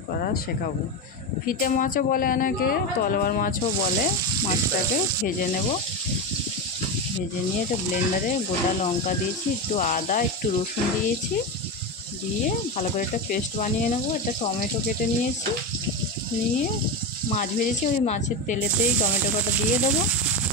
করা শেখাবো। ফিতে মাছও বলে অনেকে, তলোয়ার মাছও বলে। মাছটাকে ভেজে নেব। ভেজে নিয়ে এটা ব্লেন্ডারে গোটা লঙ্কা দিয়েছি, একটু আদা, একটু রসুন দিয়েছি, দিয়ে ভালো করে একটা পেস্ট বানিয়ে নেব। একটা টমেটো কেটে নিয়েছি, নিয়ে মাছ ভেজেছি ওই মাছের তেলেতেই টমেটো কাটা দিয়ে দেবো।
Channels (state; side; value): normal; both; correlation 0.16